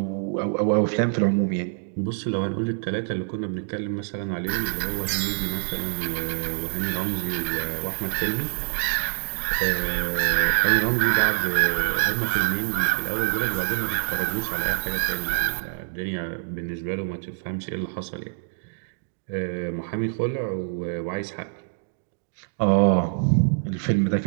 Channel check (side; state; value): left; silent; digital silence